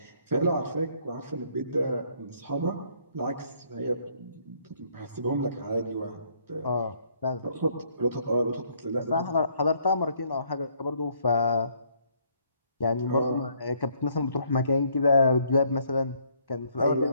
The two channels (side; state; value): both; inverted; correlation -0.67